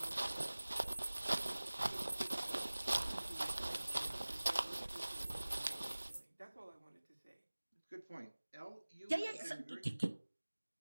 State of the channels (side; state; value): both; inverted; correlation -1.00